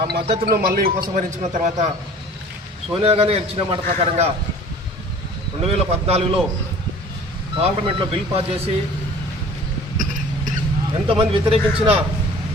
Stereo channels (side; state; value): both; normal; correlation 0.46